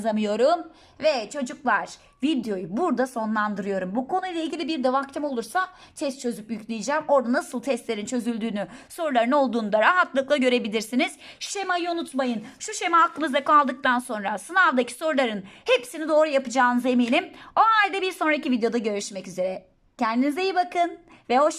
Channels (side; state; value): both; identical; correlation 1.00